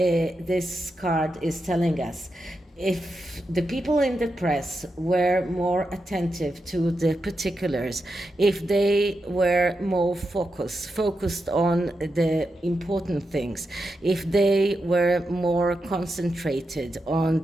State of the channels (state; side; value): normal; both; correlation 0.87